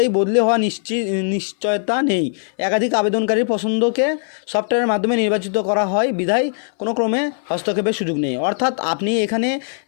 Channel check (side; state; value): right; silent; 60 dB below the other